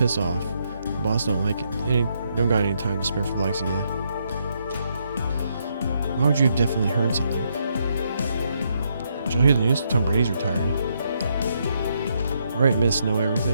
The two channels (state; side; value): inverted; both; correlation -0.76